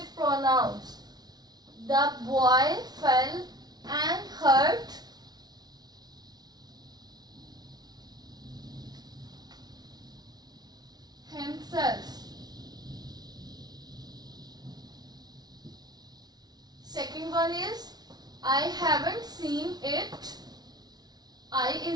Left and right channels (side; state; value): left; late; 0.19 ms